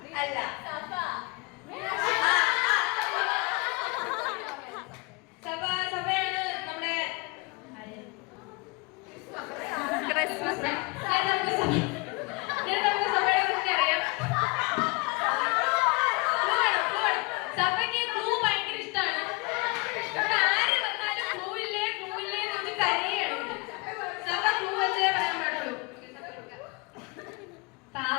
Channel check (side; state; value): right; quieter; 27.7 dB